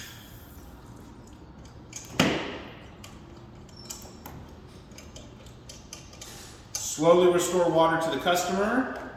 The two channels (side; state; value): both; identical; correlation 1.00